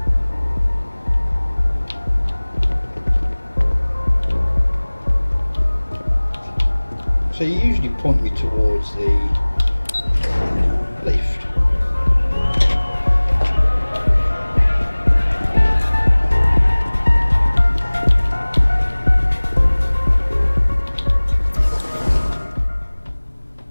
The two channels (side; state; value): both; inverted; correlation -1.00